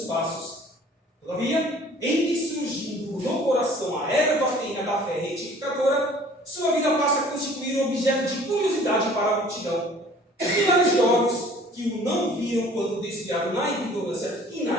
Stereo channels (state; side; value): normal; both; correlation 0.51